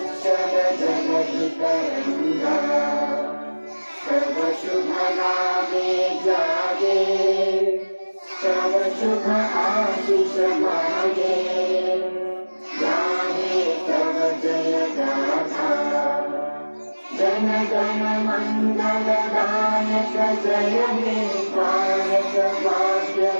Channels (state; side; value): inverted; both; correlation -1.00